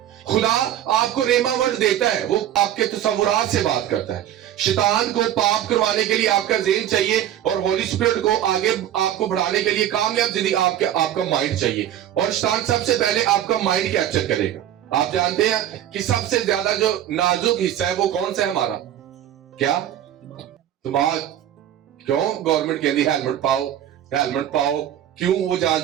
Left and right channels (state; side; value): quieter; left; 11.4 dB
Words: खुदा आपको रेमा वर्ड देता है, वो आपके तसव्वुरात से बात करता है। शैतान को पाप करवाने के लिए आपका ज़हन चाहिए और होली स्पिरिट को आगे आपको बढ़ाने के लिए कामयाब जिंदगी आपका माइंड चाहिए। और शैतान सबसे पहले आपका माइंड कैप्चर करेगा। आप जानते हैं कि सबसे ज्यादा जो नाजुक हिस्सा है वो कौन सा है हमारा? क्या? दिमाग। क्यों गवर्नमेंट कहती है हेलमेट पाओ? क्यों? वो